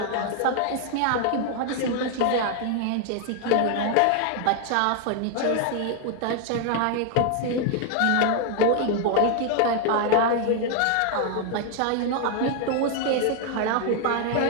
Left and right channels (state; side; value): different; both; correlation 0.00